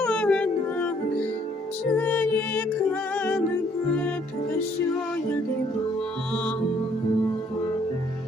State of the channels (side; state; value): both; normal; correlation 0.65